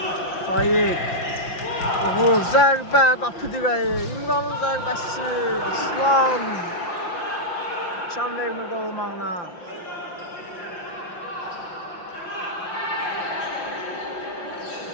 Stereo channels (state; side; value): late; right; 5.8 ms